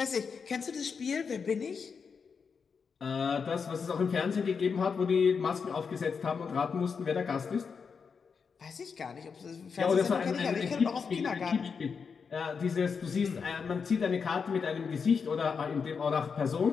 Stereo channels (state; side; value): quieter; right; 5.8 dB